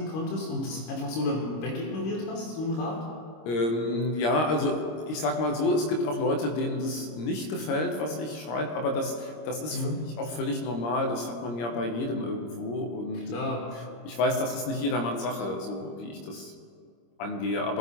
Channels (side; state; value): right; late; 26 ms